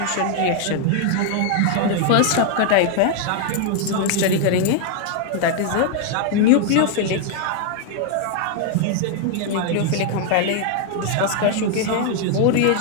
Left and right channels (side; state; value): both; different; correlation 0.00